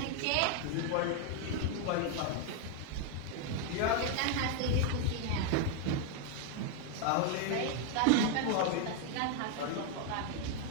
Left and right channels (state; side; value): different; both; correlation 0.00